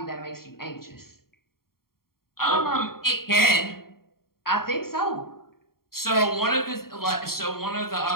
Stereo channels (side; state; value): right; late; 0.93 ms